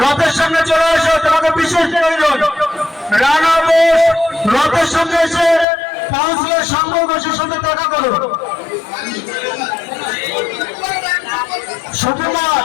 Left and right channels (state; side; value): drops out; right; at 5.7 s